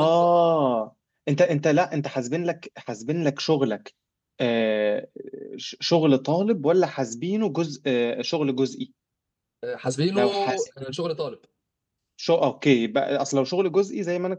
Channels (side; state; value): both; identical; correlation 1.00